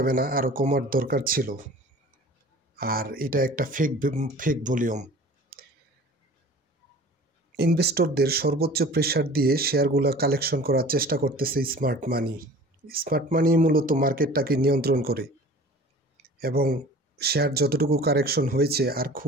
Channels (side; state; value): both; normal; correlation 0.43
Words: না, আরও কমার দরকার ছিল। আর এটা একটা ফেক ভলিউম। ইনভেস্টরদের সর্বোচ্চ প্রেসার দিয়ে শেয়ারগুলো কালেকশন করার চেষ্টা করতেছে স্মার্ট মানি। স্মার্ট মানি মূলত মার্কেটটাকে নিয়ন্ত্রণ করে এবং শেয়ার যতটুকু কারেকশন হয়েছে আর